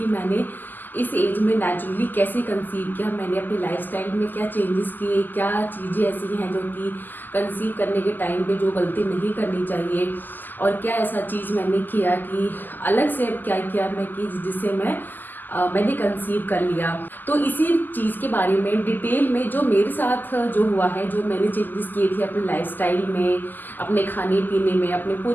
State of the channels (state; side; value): late; right; 0.088 ms